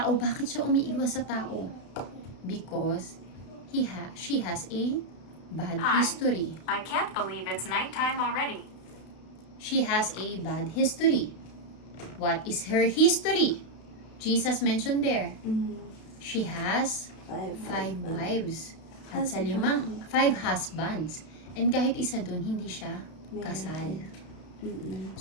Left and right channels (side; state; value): right; late; 32 ms